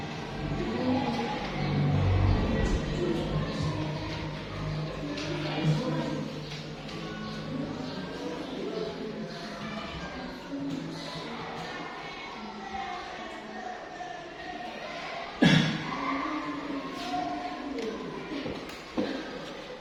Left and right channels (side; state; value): both; identical; correlation 1.00